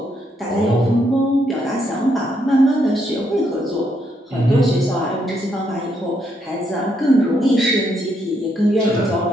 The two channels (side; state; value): both; normal; correlation 0.76